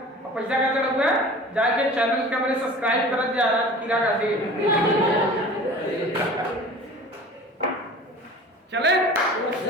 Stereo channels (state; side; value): normal; both; correlation 0.41